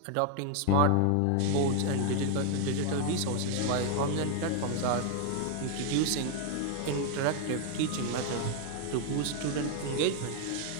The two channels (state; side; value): different; both; correlation 0.01